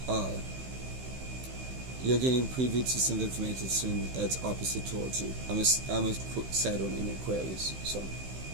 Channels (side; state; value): left; late; 16 ms